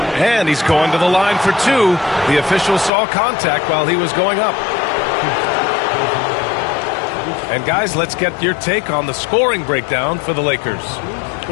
And he's going to the line for 2. The official saw contact while he was going up. And guys, let's get your take on the scoring breakdown for the Lakers.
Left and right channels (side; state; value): right; drops out; at 2.9 s